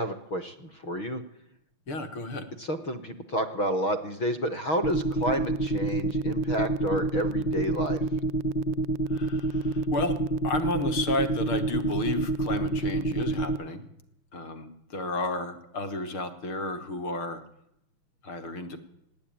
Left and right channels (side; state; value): right; late; 6.5 ms